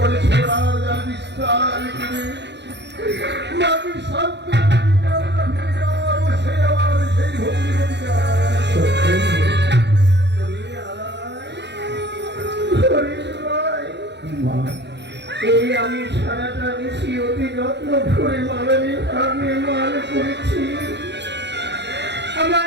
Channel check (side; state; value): left; late; 0.50 ms